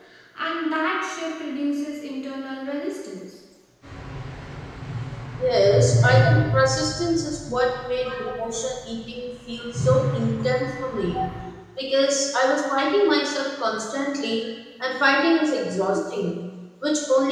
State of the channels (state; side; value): identical; both; correlation 1.00